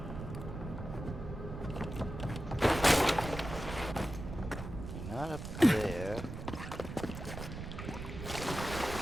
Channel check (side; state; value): right; noise; rumble, 8 dB below the sound